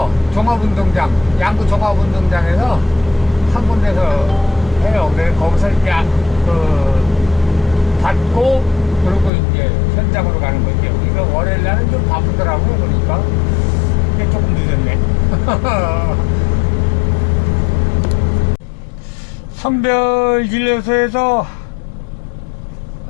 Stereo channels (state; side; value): drops out; right; at 9.3 s